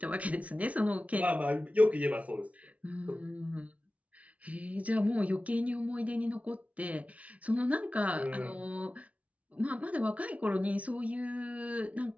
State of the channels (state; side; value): late; left; 0.067 ms